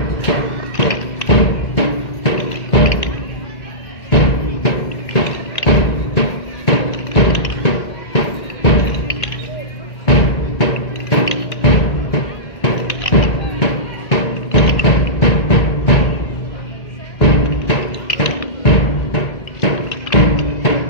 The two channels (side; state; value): right; late; 1.9 ms